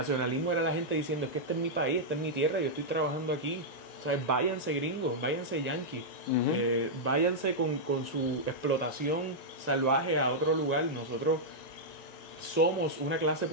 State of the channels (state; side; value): late; right; 1.9 ms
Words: era la gente diciendo, es que este es mi país, esta es mi tierra, yo estoy trabajando aquí, o sea, váyanse gringos, váyanse yanquis, váyanse con su explotación salvaje a otro lugar, nosotros somos una clase